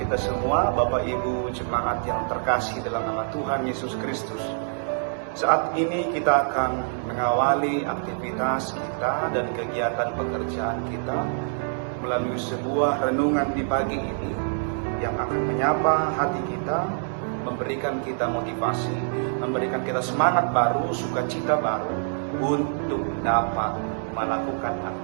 semua, Bapak Ibu jemaat yang terkasih dalam nama Tuhan Yesus Kristus. Saat ini kita akan mengawali aktivitas kita dan kegiatan pekerjaan kita melalui sebuah renungan di pagi ini yang akan menyapa hati kita, memberikan kita motivasi, memberikan kita semangat baru, sukacita baru untuk dapat melakukan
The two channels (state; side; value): silent; left; 61 dB below the other